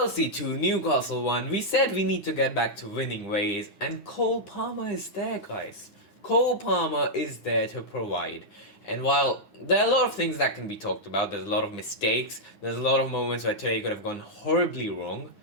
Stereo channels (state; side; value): late; right; 9.6 ms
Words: 2, Newcastle 1, we said we need to get back to winning ways and Cole Palmer is there guys. Cole Palmer is there to provide. And while there are a lot of things that can be talked about, there's a lot of mistakes, there's a lot of moments where today could have gone horribly wrong.